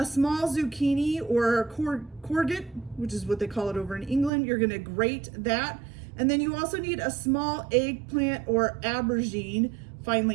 small zucchini or courgette, which is what they call it over in England. You're going to grate that, and then you also need a small eggplant or aubergine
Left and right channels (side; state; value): left; drops out; at 4.3 s